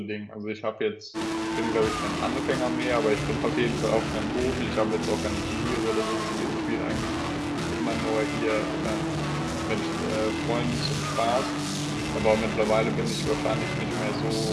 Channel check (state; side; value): identical; both; correlation 1.00